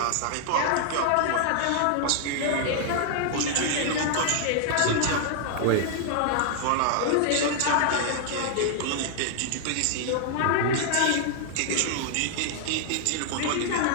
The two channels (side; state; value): both; different; correlation -0.01